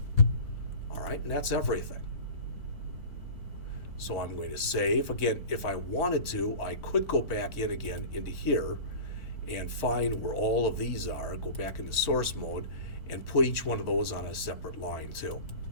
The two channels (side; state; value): right; late; 4.5 ms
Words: All right, and that's everything. So I'm going to save. Again, if I wanted to, I could go back in again into here and find where all of these are, go back into source mode, and put each one of those on a separate line too.